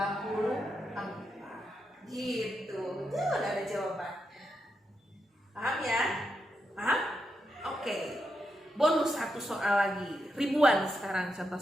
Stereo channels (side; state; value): both; normal; correlation 0.84